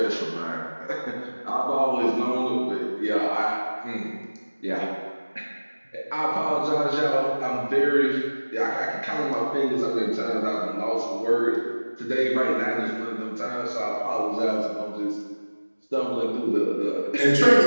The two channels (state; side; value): inverted; both; correlation -1.00